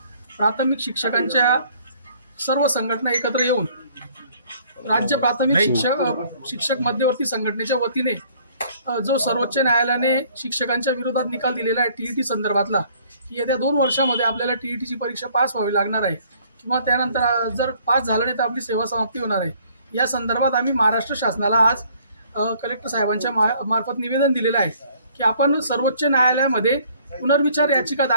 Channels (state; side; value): inverted; both; correlation -0.59